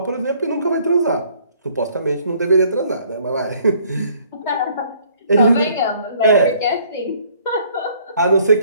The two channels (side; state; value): both; inverted; correlation -0.60